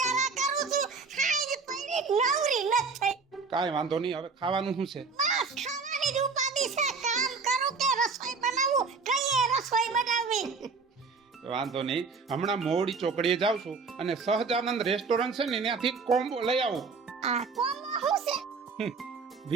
કરું છું હાઈ પડી નવરી નથ થઈ કાંઈ વાંધો નહીં, હવે ખાવાનું શું છે? બસ ખાવાની જ ઉપાધિ છે કામ કરું કે રસોઈ બનાવું કઈએ રસોઈ બનાવવી વાંધો નહીં, હમણાં મોવડી ચોકડીએ જાઉં છું અને સહજાનંદ રેસ્ટોરન્ટ છે ને ત્યાંથી કોમ્બો લઈ આવું. આ કોમો શું છે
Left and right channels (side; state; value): left; quieter; 4.8 dB